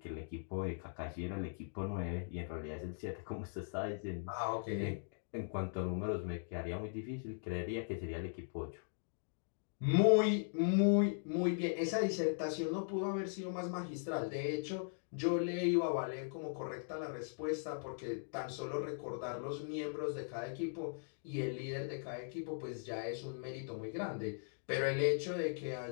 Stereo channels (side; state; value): right; silent; digital silence